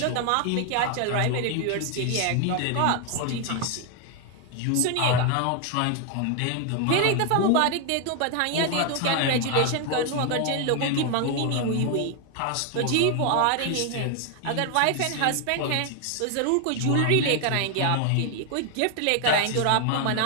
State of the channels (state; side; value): different; both; correlation 0.01